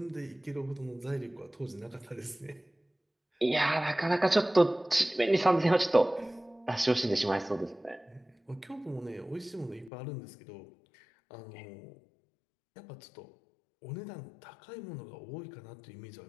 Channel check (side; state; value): right; drops out; at 9.9 s